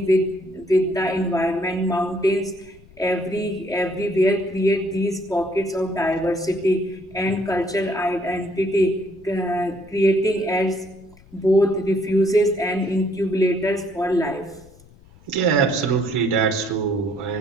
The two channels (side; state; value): left; noise; rumble, 25 dB below the sound